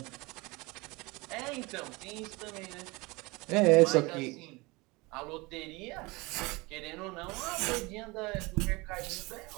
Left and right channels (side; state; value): left; quieter; 24.4 dB